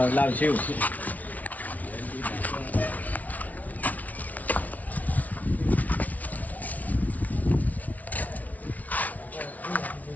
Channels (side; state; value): right; late; 0.073 ms